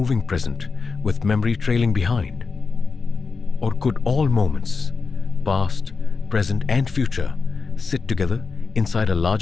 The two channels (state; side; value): quieter; right; 4.7 dB